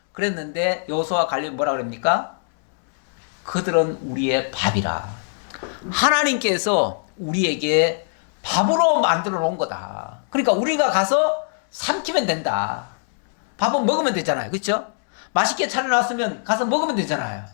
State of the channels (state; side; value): silent; right; digital silence